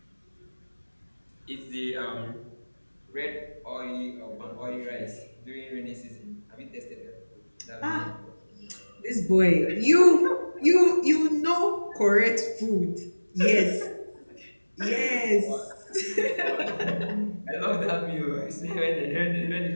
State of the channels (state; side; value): inverted; both; correlation -1.00